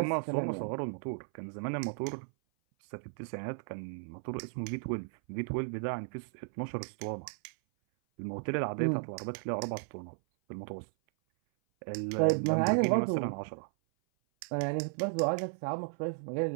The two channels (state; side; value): silent; left; 55 dB below the other